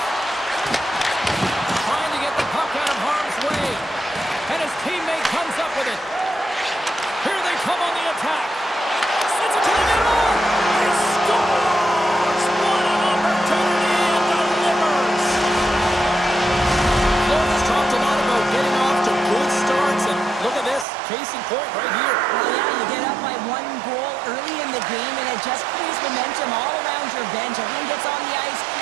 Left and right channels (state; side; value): drops out; left; at 20.9 s